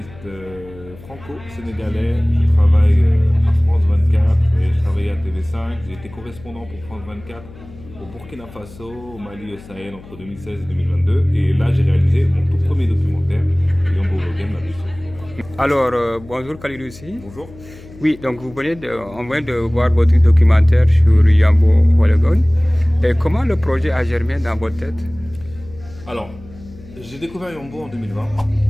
franco-sénégalais. Je travaille à France 24 et je travaille à TV5. J'ai été correspondant pour France 24 au Burkina Faso, au Mali et au Sahel entre 2016 et 2022. Et là, j'ai réalisé mon tout premier documentaire, Yombo Game, la blessure. Alors, bonjour Kalidoussi. Bonjour. Oui, donc on vient de voir votre documentaire sur Yambo Wologon. Et comment le projet a germé dans votre tête? Alors, j'ai découvert Yombo en 2020,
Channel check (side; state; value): left; noise; hum, 19 dB below the sound